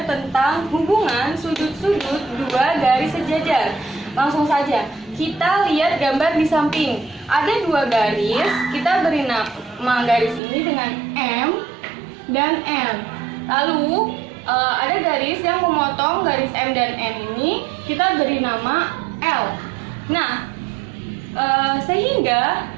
tentang hubungan sudut-sudut dua garis sejajar. Langsung saja, kita lihat gambar di samping. Ada dua garis, kita beri nama garis ini dengan M dan N. Lalu ada garis yang memotong garis M dan N ini, kita beri nama L. Nah, sehingga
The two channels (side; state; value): left; drops out; at 10.4 s